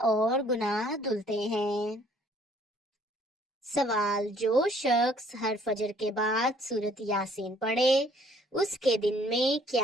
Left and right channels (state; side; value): normal; both; correlation 0.60